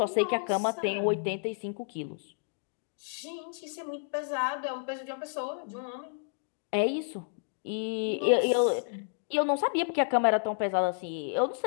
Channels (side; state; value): right; silent; digital silence